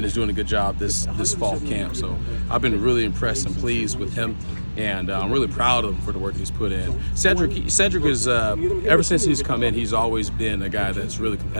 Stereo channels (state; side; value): inverted; both; correlation -1.00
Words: is doing a good job this fall camp. So I've been really impressed and pleased with him. And I'm really proud of him for the work he's put in. Cedric is, ever since he's come in, he's always been a guy that's really